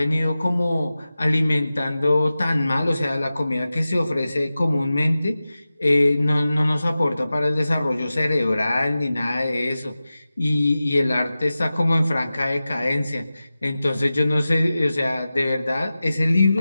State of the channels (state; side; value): inverted; both; correlation -0.95